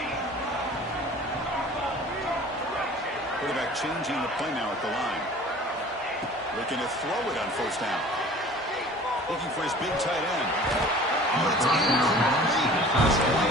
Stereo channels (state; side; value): normal; both; correlation 0.45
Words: Quarterback changing the play now at the line. Looking to throw it on first down. Looking for his big tight end. Oh, it's incomplete. It's